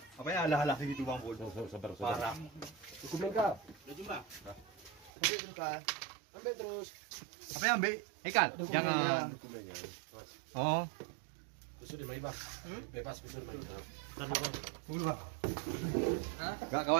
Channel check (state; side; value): drops out; left; at 5.1 s